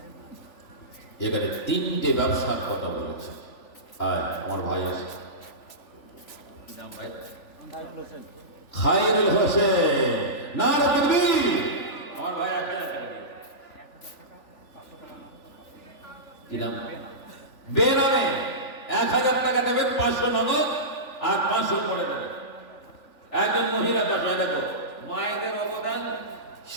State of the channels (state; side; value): late; right; 3.4 ms